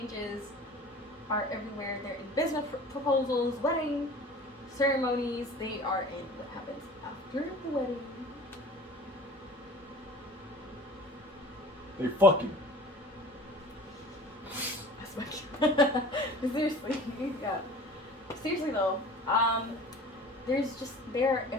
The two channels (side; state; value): both; normal; correlation 0.42